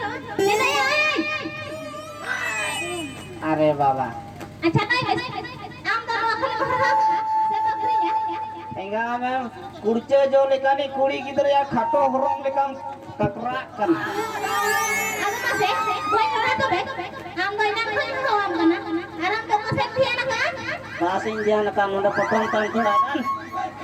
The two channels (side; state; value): both; identical; correlation 1.00